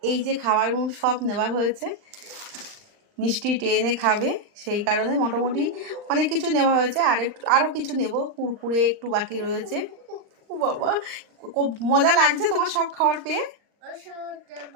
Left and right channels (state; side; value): late; left; 39 ms